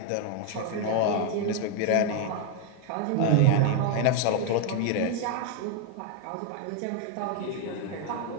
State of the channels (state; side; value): different; both; correlation 0.01